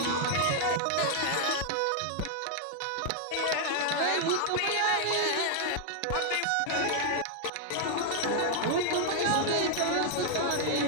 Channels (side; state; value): both; different; correlation 0.00